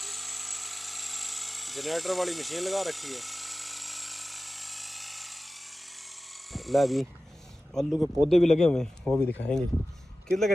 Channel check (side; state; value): both; normal; correlation 0.95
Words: جنریٹر والی مشین لگا رکھی ہے۔ ला भी आलू के पौधे भी लगे हुए हैं, वो भी दिखाएंगे। कितने लग